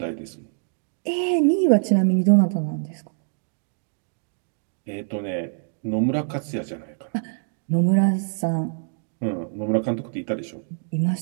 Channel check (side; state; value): left; silent; digital silence